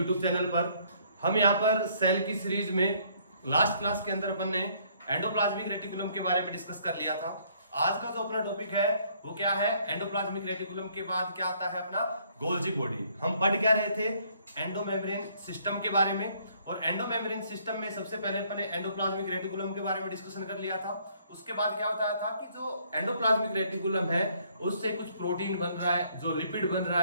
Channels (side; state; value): both; inverted; correlation -0.64